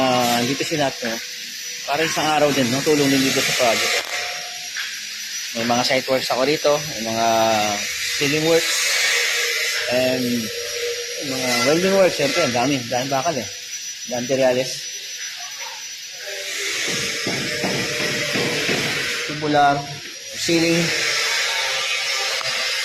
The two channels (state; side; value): identical; both; correlation 1.00